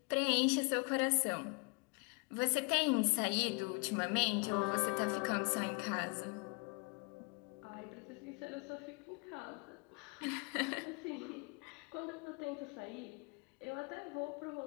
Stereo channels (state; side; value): quieter; right; 30.9 dB